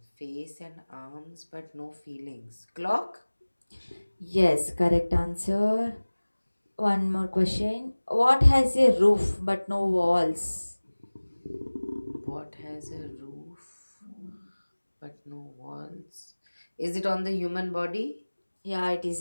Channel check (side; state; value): both; inverted; correlation -1.00